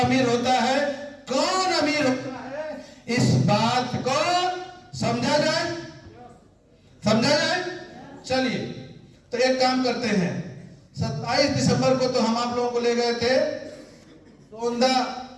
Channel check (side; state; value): both; identical; correlation 1.00